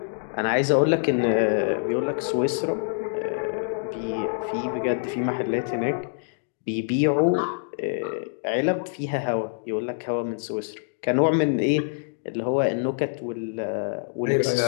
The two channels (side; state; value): right; silent; digital silence